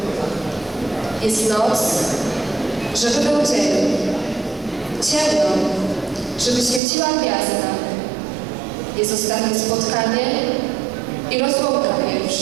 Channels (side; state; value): left; drops out; at 6.8 s